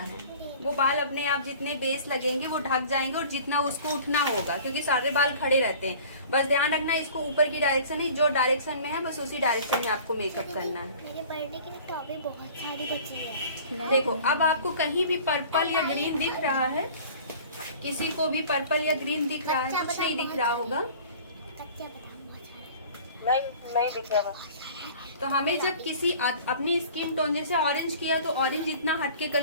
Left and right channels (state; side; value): inverted; both; correlation -0.45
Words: वो बाल अपने आप जितने बेस लगेंगे वो ढक जाएंगे, और जितना उसको उठना होगा, क्योंकि सारे बाल खड़े रहते हैं। बस ध्यान रखना, इसको ऊपर की डायरेक्शन है, जो डायरेक्शन में है बस उसी डायरेक्शन में आपको मेकअप करना है। मेरे बर्थडे के लिए टॉपी बहुत सारी बची है। देखो, अब आपको कहीं भी पर्पल या ग्रीन दिख रहा है? किसी को भी पर्पल या ग्रीन दिख रहा है? कुछ नहीं दिख रहा होगा। कच्चा बादाम बहुत सारे। नहीं दिख रहा। तो हमें जब किसी अपनी स्किन टोन, जैसे ऑरेंज किया तो ऑरेंज इतना हटके